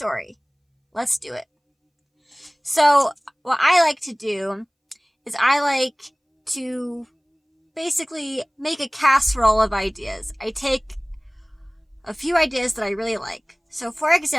Let's do it. So, what I like to do is I like to basically make a casserole of ideas. I take a few ideas that I really like. So, for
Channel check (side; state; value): both; identical; correlation 1.00